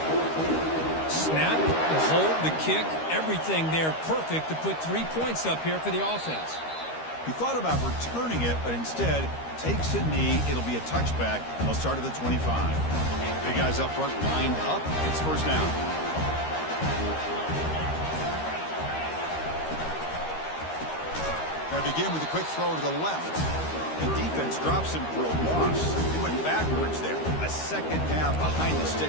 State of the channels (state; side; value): late; right; 13 ms